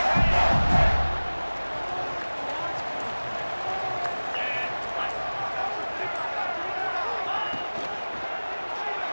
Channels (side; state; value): both; inverted; correlation -1.00